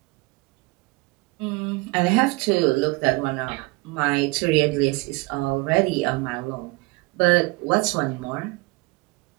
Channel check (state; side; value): quieter; left; 25.1 dB